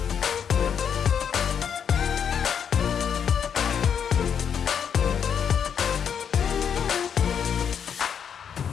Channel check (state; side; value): quieter; right; 7.7 dB